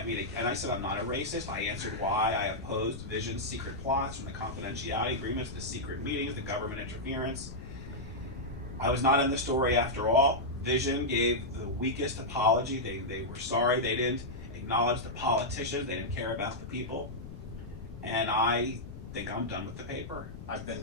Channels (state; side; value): noise; left; rumble, 12 dB below the sound